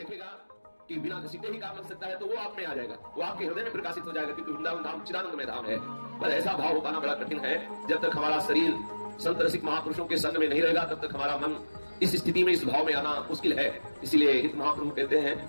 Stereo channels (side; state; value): both; inverted; correlation -1.00